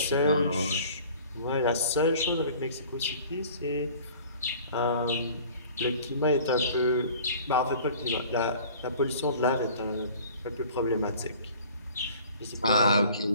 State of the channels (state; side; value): inverted; both; correlation -0.47